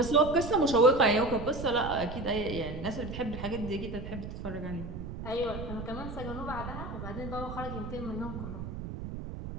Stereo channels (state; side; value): noise; right; rumble, 8 dB below the sound